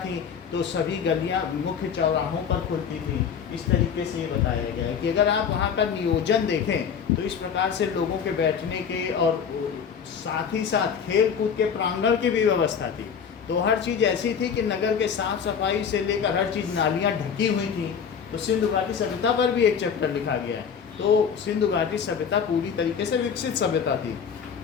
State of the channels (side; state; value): right; quieter; 7.1 dB